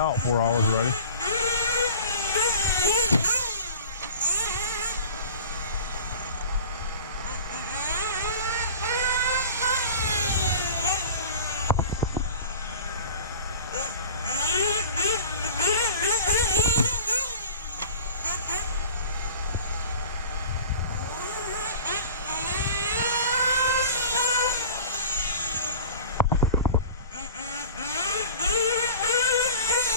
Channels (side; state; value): both; inverted; correlation -0.39